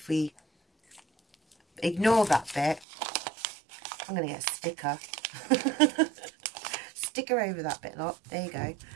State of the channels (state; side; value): drops out; left; at 2.9 s